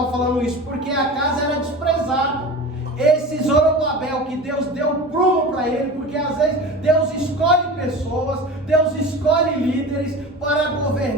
falando isso? Porque a casa era desprezada. Esse Zorobabel que Deus deu prumo para ele, porque às vezes Deus escolhe pessoas, Deus escolhe líderes para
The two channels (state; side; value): normal; both; correlation 0.33